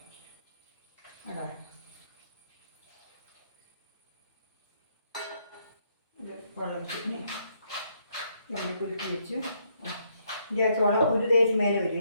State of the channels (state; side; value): inverted; both; correlation -0.73